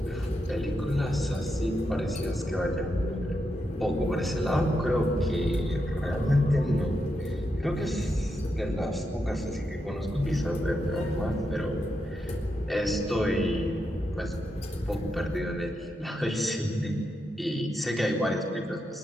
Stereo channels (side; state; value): both; normal; correlation 0.84